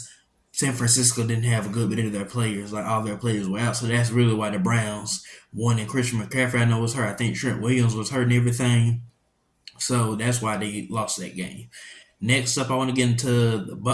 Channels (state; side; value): identical; both; correlation 1.00